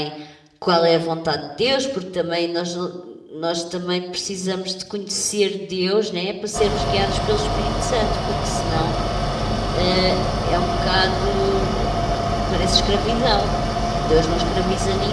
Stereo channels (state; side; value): identical; both; correlation 1.00